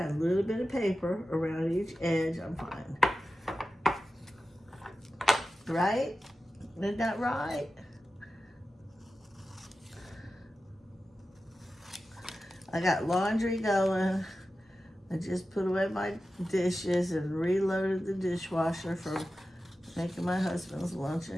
a little bit of paper around each edge, I'm fine. Right? Isn't that right? I got laundry going. I just put away my dishes and reloaded the dishwasher for making my husband's lunch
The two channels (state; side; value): normal; both; correlation 0.93